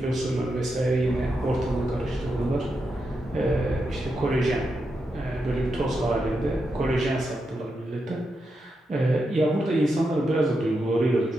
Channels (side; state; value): both; normal; correlation 0.86